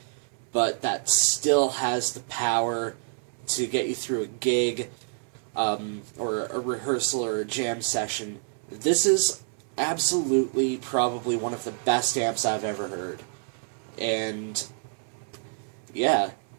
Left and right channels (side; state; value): left; silent; 60 dB below the other